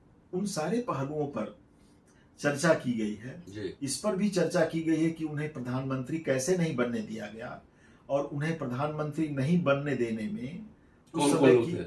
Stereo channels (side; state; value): both; identical; correlation 1.00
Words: उन सारे पहलुओं पर चर्चा की गई है। इस पर भी चर्चा की गई है कि उन्हें प्रधानमंत्री कैसे नहीं बनने दिया गया, और उन्हें प्रधानमंत्री नहीं बनने देने में उस समय की